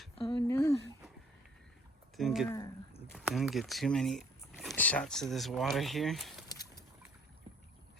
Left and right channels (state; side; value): normal; both; correlation 0.57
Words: Oh no. Didn't get too many shots of this water here.